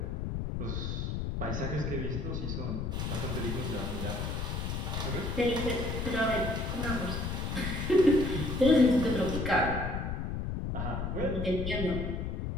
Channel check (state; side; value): noise; left; rumble, 2 dB below the sound